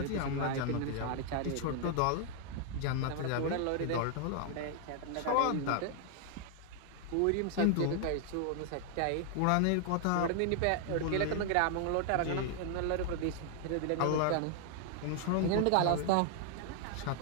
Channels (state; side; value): different; both; correlation 0.00